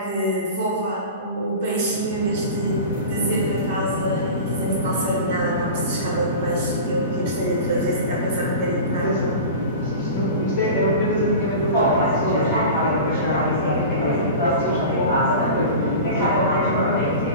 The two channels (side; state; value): both; inverted; correlation -0.33